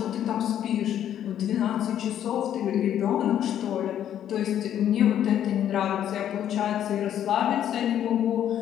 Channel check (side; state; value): right; quieter; 10.5 dB